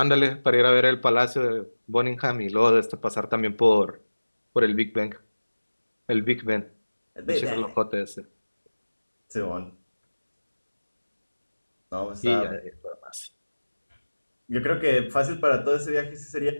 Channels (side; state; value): both; inverted; correlation -1.00